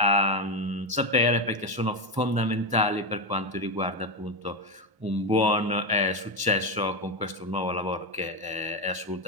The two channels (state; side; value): late; left; 1.0 ms